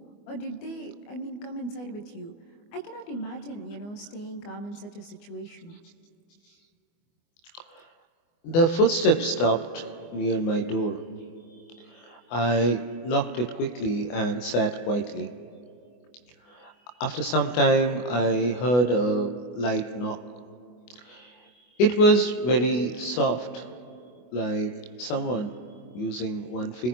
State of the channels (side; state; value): right; late; 24 ms